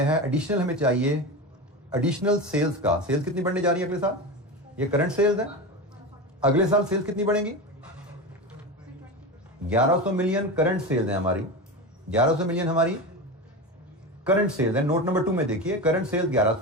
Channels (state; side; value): normal; both; correlation 0.23